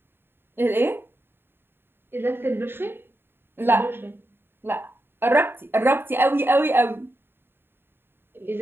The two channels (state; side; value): late; left; 0.11 ms